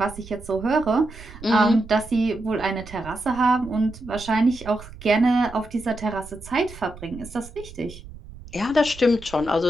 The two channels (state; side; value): noise; right; rumble, 16 dB below the sound